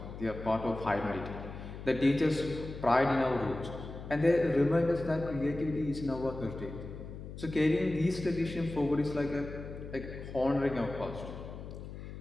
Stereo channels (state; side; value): noise; left; hum, 11 dB below the sound